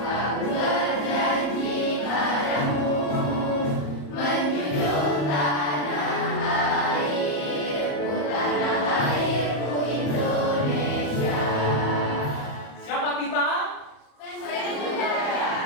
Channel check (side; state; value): right; late; 34 ms